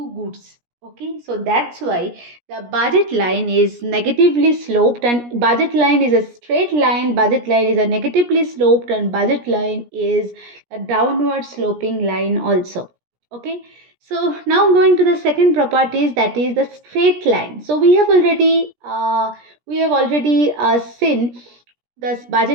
goods. Okay, so that's why the budget line is negatively sloped, and budget line is a straight line, budget line is a negatively sloped, and budget line is a downward sloping line also. Okay, so now going to the second properties, that is the straight line. So we have already seen the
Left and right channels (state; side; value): late; left; 17 ms